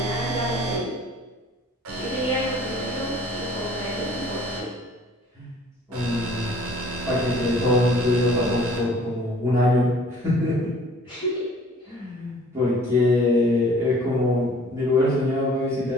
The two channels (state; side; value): normal; both; correlation 0.52